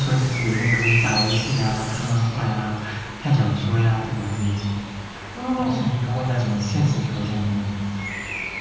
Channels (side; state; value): both; identical; correlation 1.00